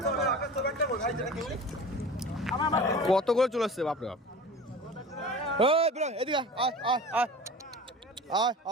কত করে চলে আসছে বাপরে বাপ এদিকে আয় আয় আয় আয়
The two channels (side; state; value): both; normal; correlation 0.37